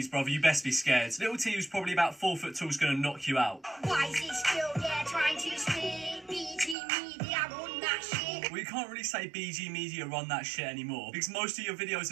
brother, you best be scared. Little T, who's probably about 4 foot tall, is gonna knock you out. Why is he still there trying to speak? BG Media, run that shit. Well, you can't really say BG Media run that shit anymore, because most of your videos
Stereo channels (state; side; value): drops out; left; at 6.8 s